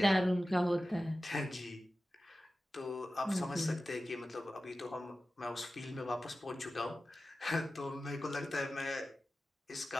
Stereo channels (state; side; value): normal; both; correlation 0.95